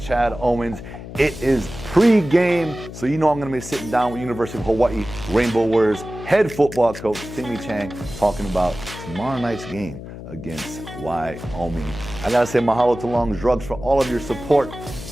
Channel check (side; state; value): left; noise; hum, 12 dB below the sound